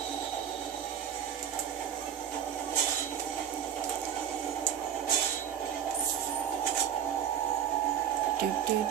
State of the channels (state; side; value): quieter; left; 9.1 dB